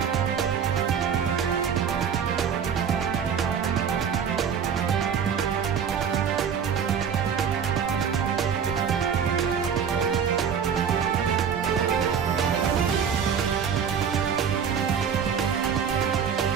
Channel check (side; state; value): left; quieter; 7.4 dB